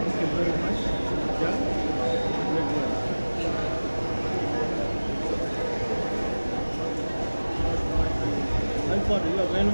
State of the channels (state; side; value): inverted; both; correlation -1.00